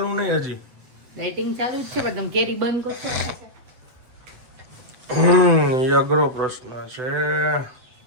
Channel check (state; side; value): late; left; 7.9 ms